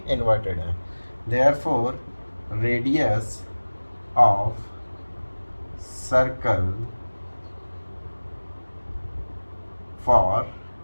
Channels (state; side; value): inverted; both; correlation -1.00